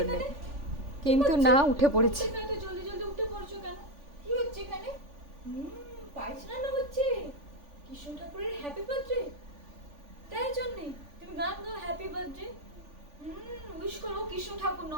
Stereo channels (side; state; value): left; late; 3.5 ms